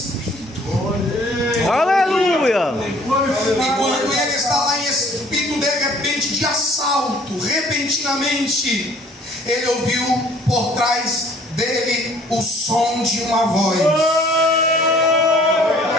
Aleluia! E quando ele está lá em espírito, de repente, de assalto, repentinamente, ele ouviu por trás dele o som de uma voz,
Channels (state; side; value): normal; both; correlation 0.56